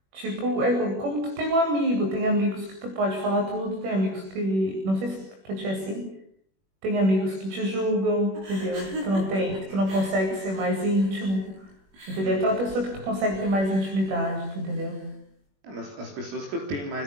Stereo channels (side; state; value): left; late; 21 ms